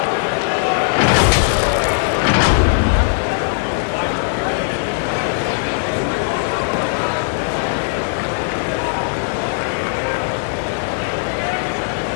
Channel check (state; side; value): silent; right; digital silence